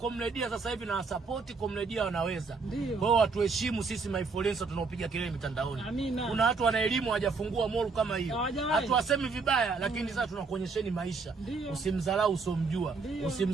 sasa hivi na support Comredia wanaweza. Kwa hiyo watu heshimu sisi influencer tunaopiga kelele mitandaoni. Amina. Kuna watu wana elimu hawajafungua mall kama hiyo. Hatuwasemi vibaya lakini sasa tunakuonyesheni maisha. Usimdharau usomjua.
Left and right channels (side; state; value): left; quieter; 4.5 dB